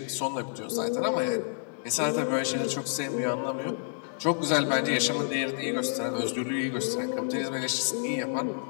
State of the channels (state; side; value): silent; right; 57 dB below the other